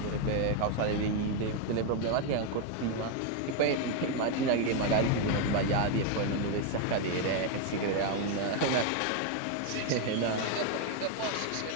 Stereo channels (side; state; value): both; different; correlation 0.01